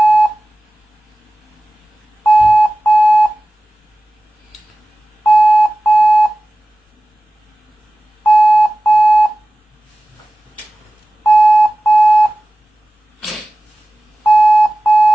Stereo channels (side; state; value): both; normal; correlation 0.96